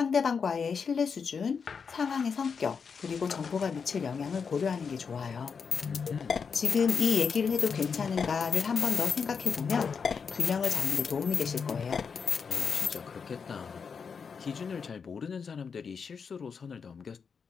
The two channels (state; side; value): quieter; right; 5.9 dB